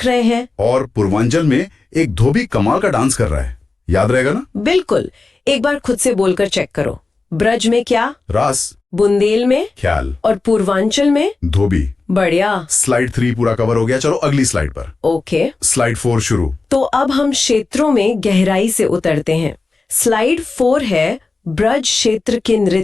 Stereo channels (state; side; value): quieter; right; 3.8 dB